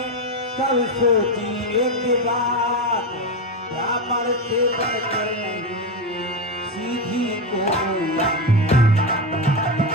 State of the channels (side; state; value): both; normal; correlation 0.12